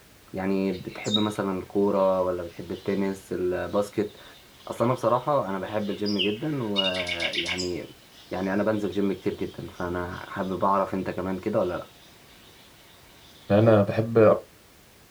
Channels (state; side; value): identical; both; correlation 1.00